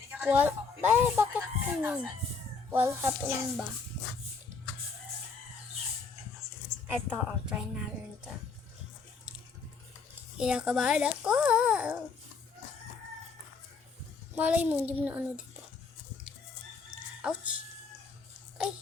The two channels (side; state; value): right; quieter; 4.9 dB